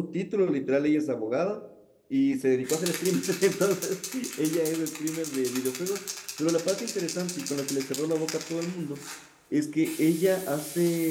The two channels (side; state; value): both; identical; correlation 1.00